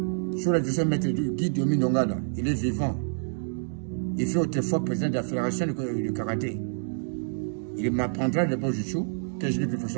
sur le deuxième maître du guide Yomi Nongala, il est vivant. Il fait autrefois président de la fédération du karaté. Il m'apprendra le Bojichu, que je l'ai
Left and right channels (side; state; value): left; silent; digital silence